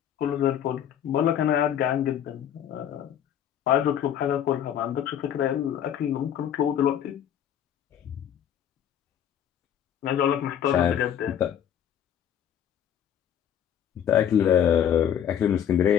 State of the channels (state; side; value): quieter; right; 9.6 dB